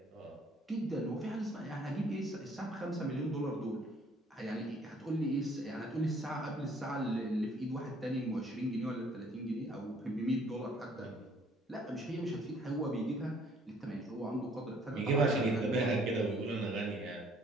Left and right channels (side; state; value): both; normal; correlation 0.60